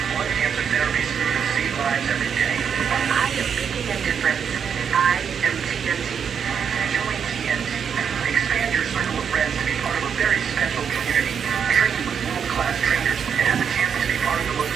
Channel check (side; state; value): left; quieter; 7.2 dB